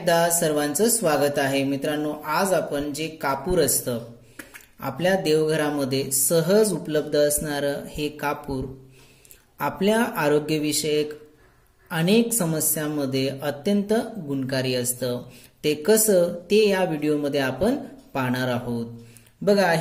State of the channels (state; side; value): identical; both; correlation 1.00